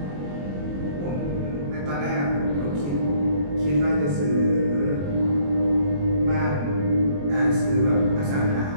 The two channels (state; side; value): late; left; 21 ms